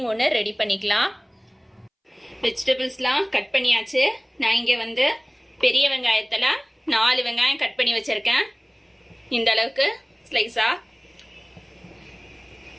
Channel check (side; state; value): both; identical; correlation 1.00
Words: ஒன்று ரெடி பண்ணிக்கலாம். வெஜிடபிள்ஸ்லாம் கட் பண்ணியாச்சு. நான் இங்கே பெரிய வெங்காயத்தில் 4 வெங்காயம் கட் பண்ணி வச்சிருக்கேன். இந்த அளவுக்கு ஸ்லைஸா.